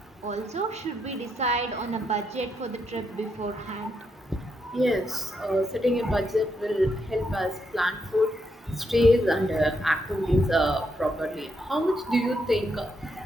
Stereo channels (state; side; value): normal; both; correlation 0.79